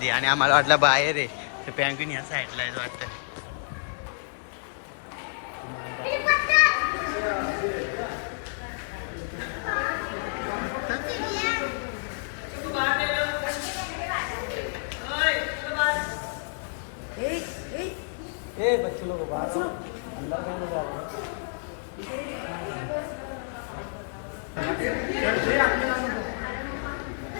आणि आम्हाला वाटलं बाहेर आहे. तर पँग्विन ह्या साईडला आहे वाटतं.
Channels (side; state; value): right; silent; digital silence